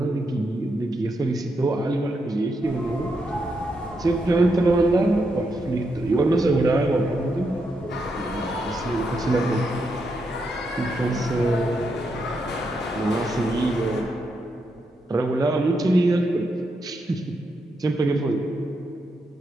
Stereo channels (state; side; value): normal; both; correlation 0.82